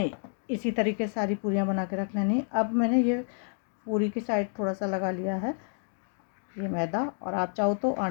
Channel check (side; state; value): right; silent; 58 dB below the other